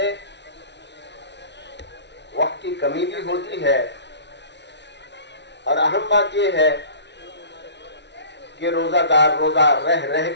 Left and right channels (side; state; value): right; late; 0.51 ms